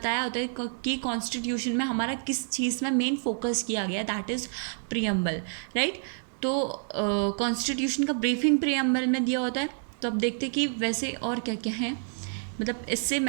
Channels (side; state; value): left; silent; digital silence